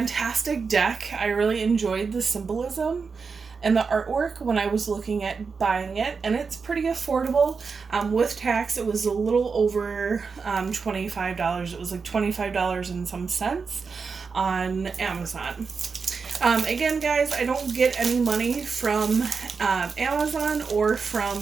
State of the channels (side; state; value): left; quieter; 5.2 dB